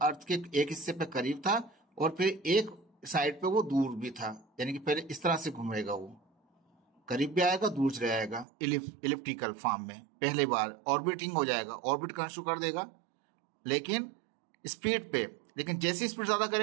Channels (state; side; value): drops out; left; at 8.5 s